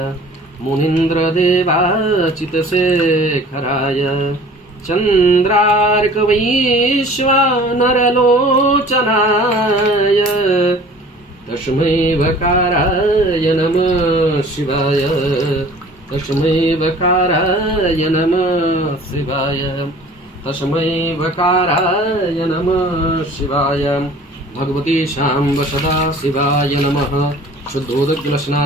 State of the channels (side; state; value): both; normal; correlation 0.47